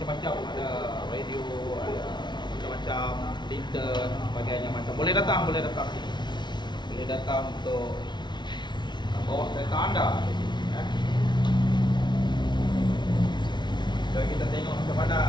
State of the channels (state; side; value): late; right; 0.21 ms